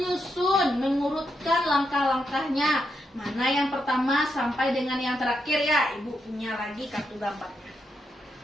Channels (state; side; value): normal; both; correlation 0.82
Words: mengurutkan langkah-langkahnya. Mana yang pertama sampai dengan yang terakhir ya. Ibu punya lagi kartu gambarnya.